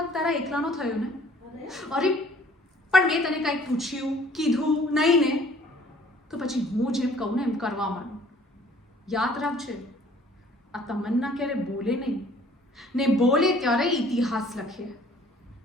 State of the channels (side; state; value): both; normal; correlation 0.55